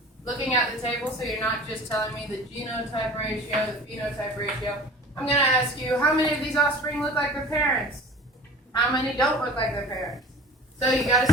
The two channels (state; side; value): normal; both; correlation 0.40